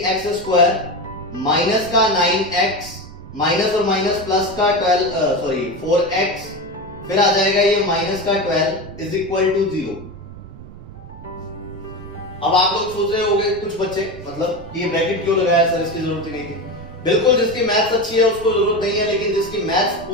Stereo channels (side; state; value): right; noise; rumble, 17 dB below the sound